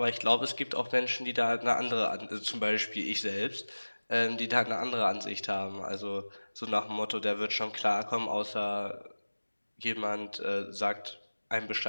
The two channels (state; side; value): inverted; both; correlation -1.00